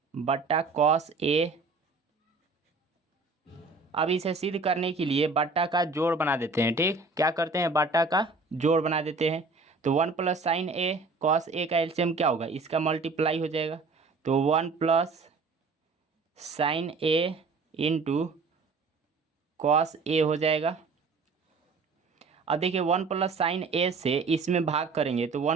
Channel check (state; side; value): quieter; left; 4.1 dB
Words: बटा कॉस ए। अब इसे सिद्ध करने के लिए बट्टा का जोड़ बना देते हैं। ठीक, क्या करते हैं, बट्टा का जोड़ बना देते हैं। तो 1 + sin a cos a का एलसीएम क्या होगा, इसका मल्टीप्लाई हो जाएगा। तो 1 + sin a into cos A हो जाएगा। अब देखिए 1 + sin a से इसमें भाग करेंगे तो